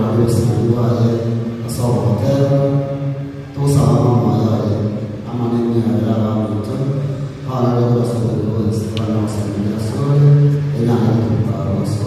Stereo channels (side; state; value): both; identical; correlation 1.00